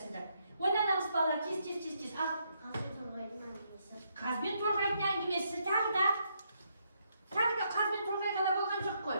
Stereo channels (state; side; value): inverted; both; correlation -0.76